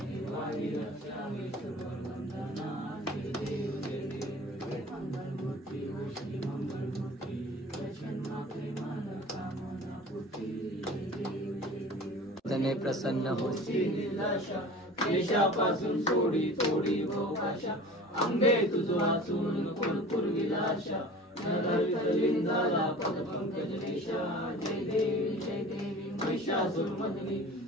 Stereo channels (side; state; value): both; normal; correlation 0.40